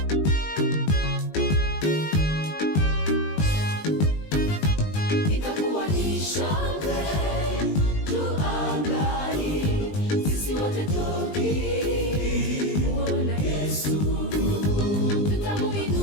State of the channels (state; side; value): late; right; 20 ms